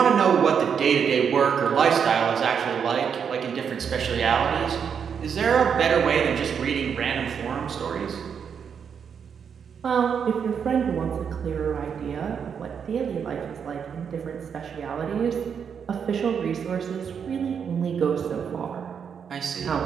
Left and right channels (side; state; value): left; quieter; 7.1 dB